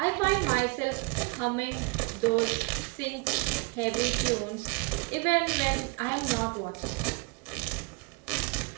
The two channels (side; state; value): left; quieter; 29.5 dB